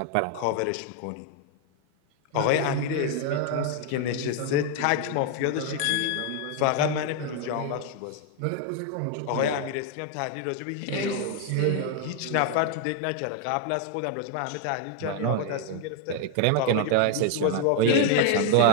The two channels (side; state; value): both; different; correlation 0.00